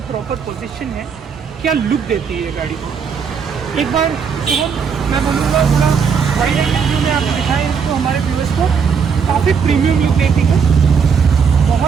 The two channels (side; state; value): left; quieter; 6.3 dB